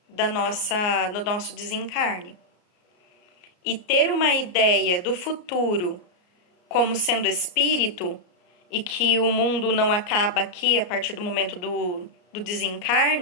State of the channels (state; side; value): late; right; 34 ms